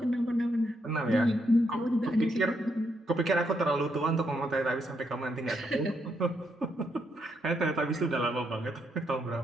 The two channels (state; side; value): normal; both; correlation 0.78